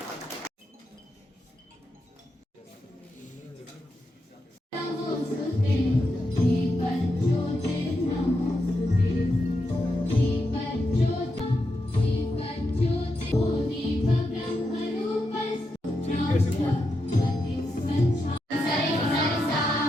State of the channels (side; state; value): both; normal; correlation 0.85